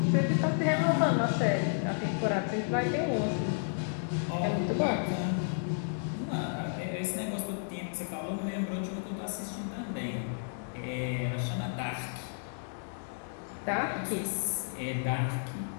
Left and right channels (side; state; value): right; silent; 56 dB below the other